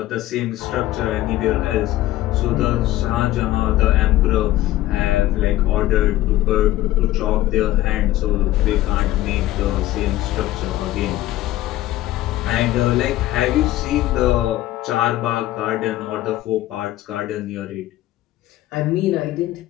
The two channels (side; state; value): right; quieter; 15.3 dB